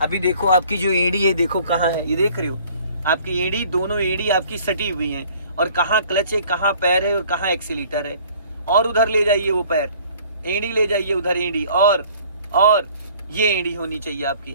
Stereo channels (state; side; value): inverted; both; correlation -0.54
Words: अभी देखो आपकी जो एड़ी है, देखो कहाँ है, ये देख रहे हो आपकी एड़ी, दोनों एड़ी आपकी सटी हुई हैं, और कहाँ क्लच है, कहाँ पैर है और कहाँ एक्सीलेटर है। और उधर ले जाइए वो पैर, एड़ी ले जाइए उधर, एड़ी और ये एड़ी होनी चाहिए आपकी।